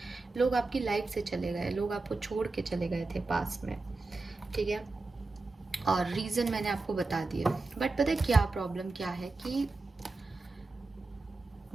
लोग आपकी लाइफ से चले गए, लोग आपको छोड़ के चले गए थे पास्ट में, ठीक है। और रीज़न मैंने आपको बता दिया। बट पता है क्या प्रॉब्लम क्या है कि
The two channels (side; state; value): left; quieter; 3.5 dB